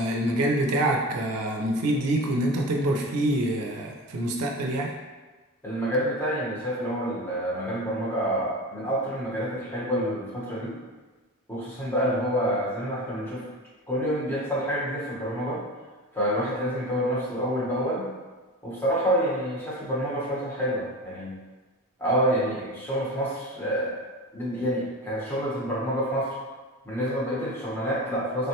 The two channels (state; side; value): normal; both; correlation 0.30